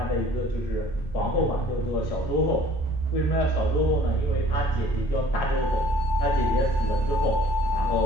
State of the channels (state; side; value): normal; both; correlation 0.53